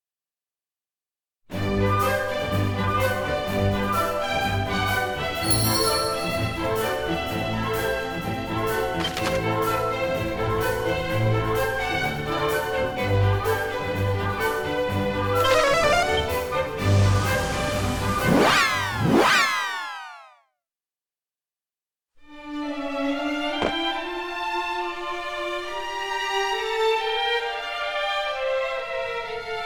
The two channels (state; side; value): identical; both; correlation 1.00